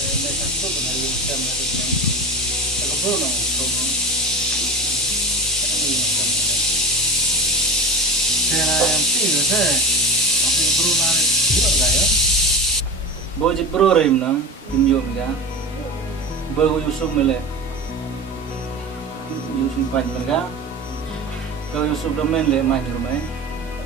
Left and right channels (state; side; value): normal; both; correlation 0.28